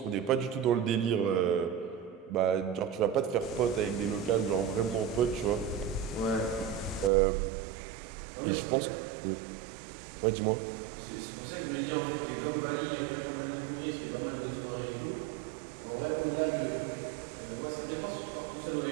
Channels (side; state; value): left; drops out; at 7.1 s